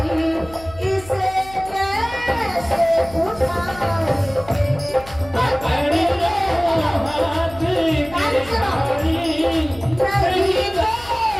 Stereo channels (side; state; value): left; noise; hum, 19 dB below the sound